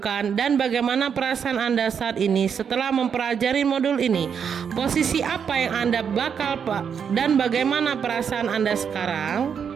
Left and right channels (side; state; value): left; quieter; 7.2 dB